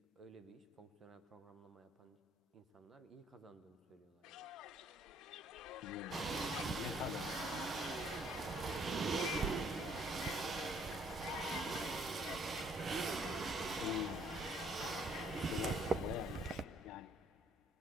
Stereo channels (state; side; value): normal; both; correlation 0.64